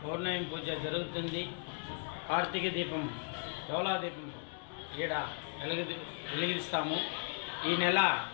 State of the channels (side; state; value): right; silent; 53 dB below the other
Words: పౌర్ణమి పూజ జరుగుతుంది. కార్తీక దీపం, డోలా దీపం ఈడ వెలిగిస్తాము. ఈ నెల